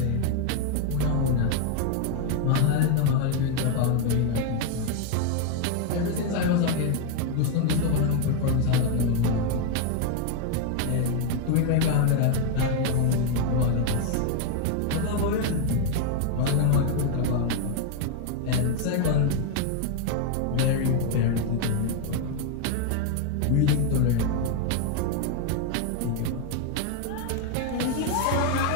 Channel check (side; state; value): both; different; correlation 0.01